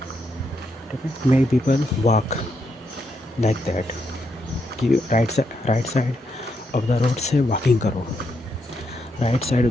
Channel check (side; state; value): both; normal; correlation 0.80